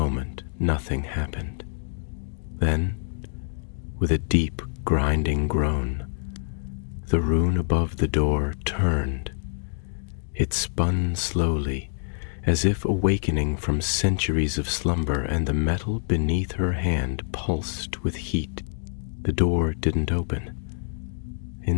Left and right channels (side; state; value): right; silent; digital silence